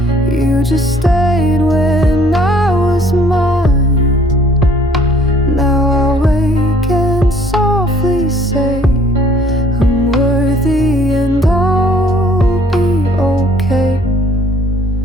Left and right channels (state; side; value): normal; both; correlation 0.59